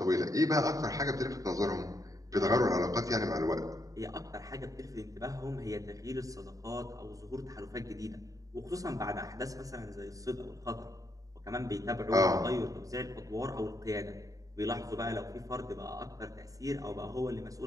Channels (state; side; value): late; left; 0.17 ms